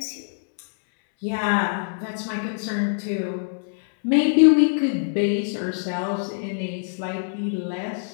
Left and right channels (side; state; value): right; silent; 63 dB below the other